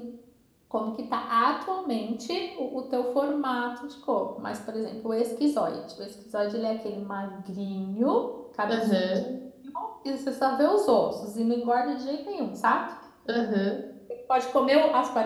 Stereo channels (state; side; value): identical; both; correlation 1.00